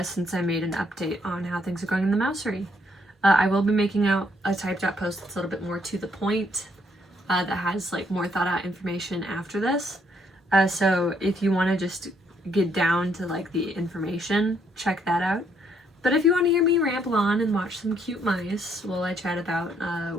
since I made an update on how things are going in the Mousery. I will be making out a typed out post that's a little bit more to the point, that has like more thought out information after this. So if you want to just get down to like the information, check that out. But if you want to hear me ramble on and watch some cute mice while I chat about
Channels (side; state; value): both; normal; correlation 0.71